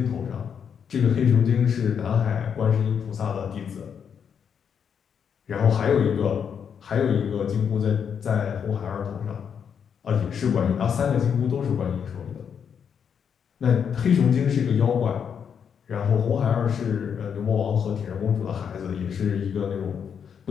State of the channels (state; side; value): quieter; right; 7.4 dB